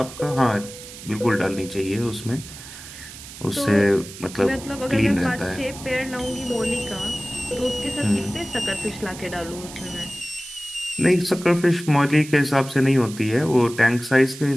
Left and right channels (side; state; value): right; noise; hiss, 14 dB below the sound